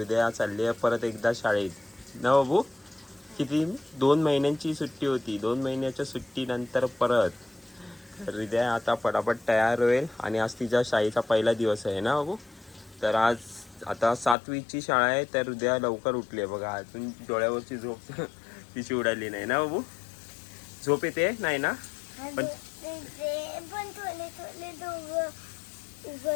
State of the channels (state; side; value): drops out; right; at 14.4 s